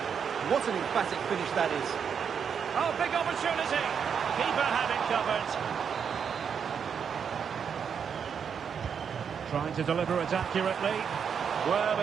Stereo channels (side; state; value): left; quieter; 7.1 dB